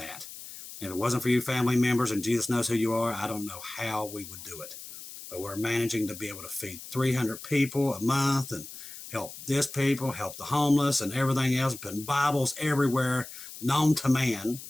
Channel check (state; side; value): noise; left; hiss, 13 dB below the sound